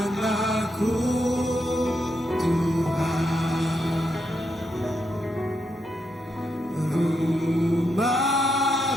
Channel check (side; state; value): both; normal; correlation 0.82